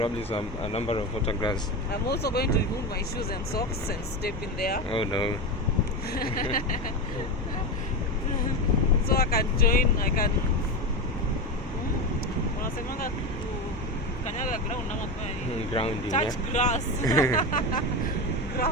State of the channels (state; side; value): normal; both; correlation 0.18